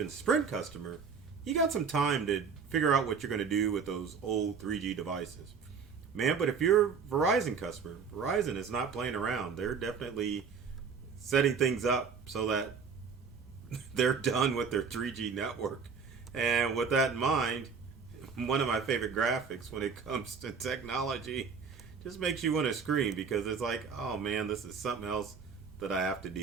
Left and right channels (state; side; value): quieter; left; 5.8 dB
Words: Sprint customer, you got some time to figure out what you're going to do with those old 3G devices. Man, but if you're a Verizon customer, Verizon is not playing around. They're definitely setting things up so that they're done with their 3G network. And with that in mind, one of my favorite graphics when it comes to technology just makes you want to scream because it's like, oh man, this is something else that I have to